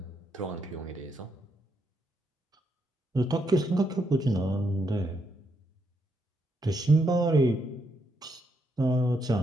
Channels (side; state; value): both; normal; correlation 0.78